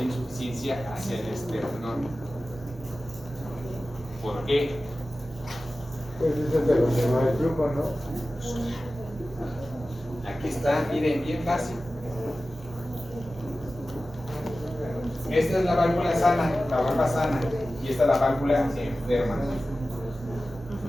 insuficiencia hacia el esternón. ¿Por qué? Pues eso es de lo que va el flujo, ¿no? Aquí está, miren, bien fácil. Esta es la válvula sana, la valva sana, y esta es la válvula enferma.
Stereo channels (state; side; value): normal; both; correlation 0.95